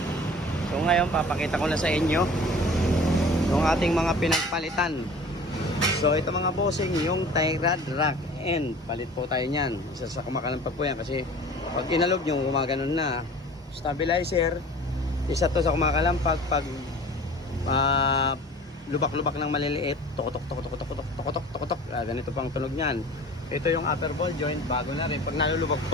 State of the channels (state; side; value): normal; both; correlation 0.43